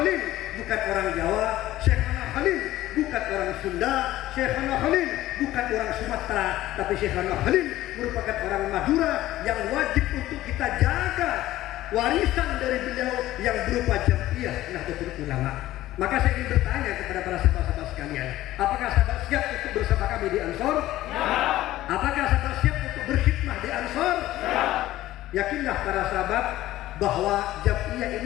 bukan orang Jawa, Syekhana Khalil bukan orang Sunda, Syekhana Khalil bukan orang Sumatera, tapi Syekhana Khalil merupakan orang Madura yang wajib untuk kita jaga warisan dari beliau yang berupa Jamiah Nahdlatul Ulama. Maka saya ingin bertanya kepada para sahabat-sahabat sekalian, apakah sahabat siap untuk bersama kami di Ansor? Ya. Apakah sahabat siap untuk berkhidmah di Ansor? Ya. Yakinlah para sahabat bahwa Jamiah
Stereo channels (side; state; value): right; quieter; 15.2 dB